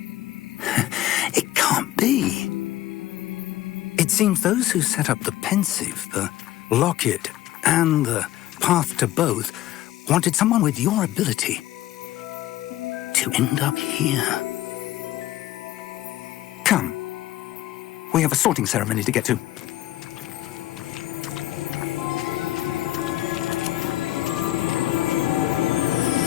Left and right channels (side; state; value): right; quieter; 14.7 dB